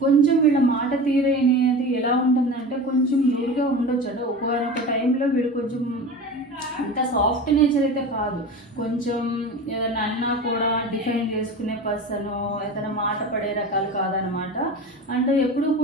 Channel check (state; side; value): normal; both; correlation 0.31